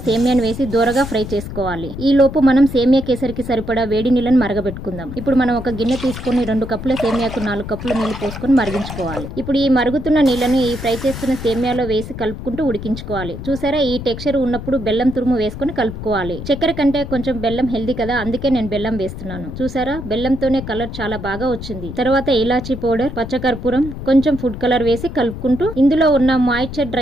సేమియాను వేసి దూరగా ఫ్రై చేసుకోవాలి. ఈ లోపు మనం సేమియా కేసరికి సరిపడా వేడి నీళ్ళని మరగబెట్టుకుందాం. ఇప్పుడు మనం ఒక గిన్నె తీసుకుని 2 కప్పుల సేమియాకు 4 కప్పుల నీళ్లు పోసుకొని మరిగించుకోవాలి. ఇప్పుడు ఈ మరుగుతున్న నీళ్లను ఈ ఫ్రై చేస్తున్న సేమియాలో వేసి కలుపుకుంటూ ఉడికించుకోవాలి. చూసారా, ఈ టెక్స్చర్ ఉన్నప్పుడు బెల్లం తురుము వేసుకొని కలుపుకోవాలి. చక్కెర కంటే కొంచెం బెల్లం హెల్దీ కదా, అందుకే నేను బెల్లం వేస్తున్నాను. చూసారా, బెల్లంతోనే కలర్ చాలా బాగా వచ్చింది. తర్వాత ఇలాచీ పౌడర్, పచ్చకర్పూరం, కొంచెం ఫుడ్ కలర్ వేసి కలుపుకుంటూ ఇందులో ఉన్న మాయిశ్చర్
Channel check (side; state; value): left; noise; rumble, 9 dB below the sound